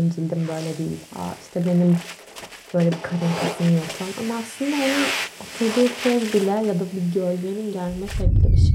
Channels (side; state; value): both; identical; correlation 1.00